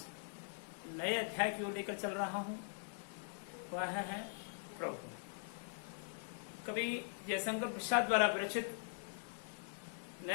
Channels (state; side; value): silent; right; digital silence